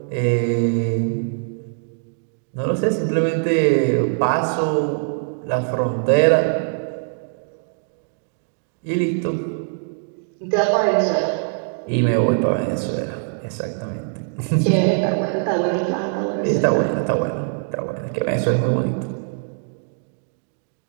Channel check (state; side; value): silent; left; digital silence